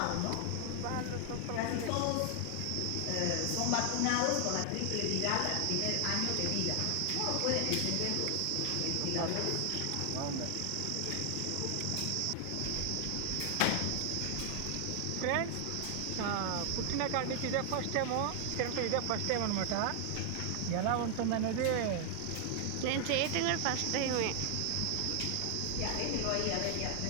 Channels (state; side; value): different; both; correlation 0.00